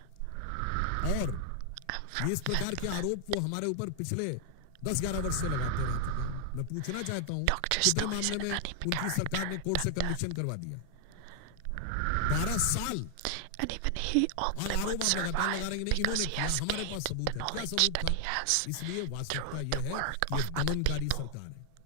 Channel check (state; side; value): different; both; correlation 0.00